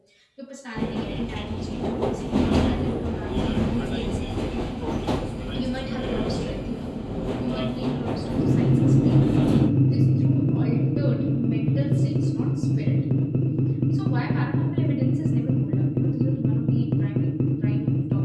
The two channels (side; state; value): both; identical; correlation 1.00